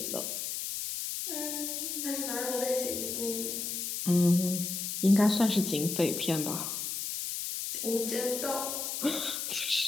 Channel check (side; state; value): left; noise; hiss, 3 dB below the sound